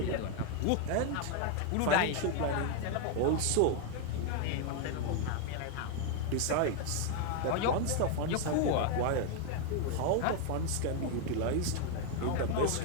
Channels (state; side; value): different; both; correlation 0.01